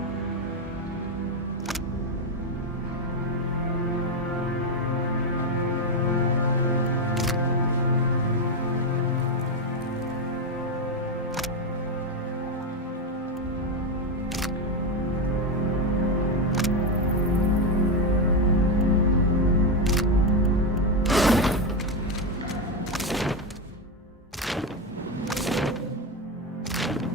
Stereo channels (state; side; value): normal; both; correlation 0.08